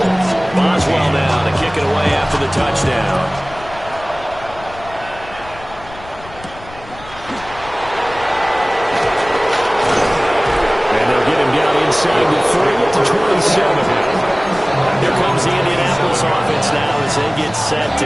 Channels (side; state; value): left; noise; rumble, 18 dB below the sound